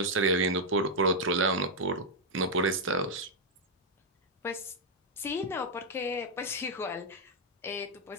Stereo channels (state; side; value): normal; both; correlation -0.02